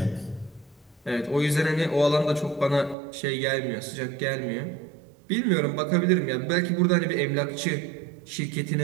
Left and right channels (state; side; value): drops out; left; at 3.0 s